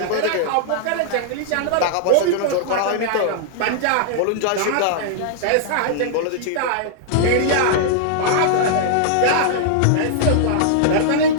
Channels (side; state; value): both; different; correlation -0.01